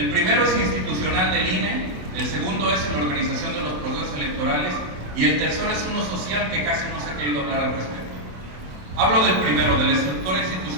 primero es institucional del INE, el segundo es en la organización de los procesos electorales y el tercero es uno social que casi no se ha querido hablar al respecto. Hablo del primero, de la estructura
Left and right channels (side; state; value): left; late; 27 ms